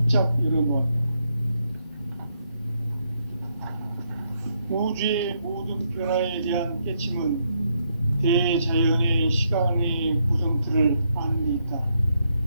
열어놓았다. 우주의 모든 변화에 대한 깨침은 대자연의 시간의 구성틀을 아는 데 있다.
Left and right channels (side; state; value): both; inverted; correlation -0.77